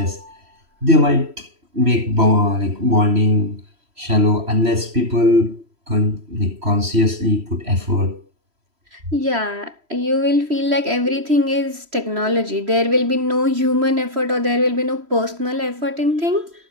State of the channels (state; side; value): late; left; 3.1 ms